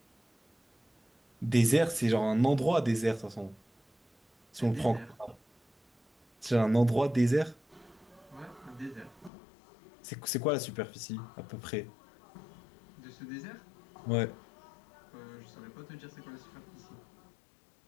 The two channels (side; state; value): right; drops out; at 9.3 s